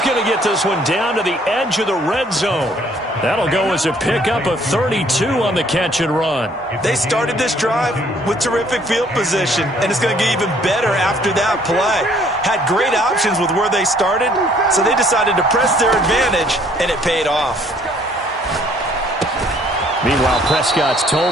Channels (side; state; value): both; normal; correlation 0.61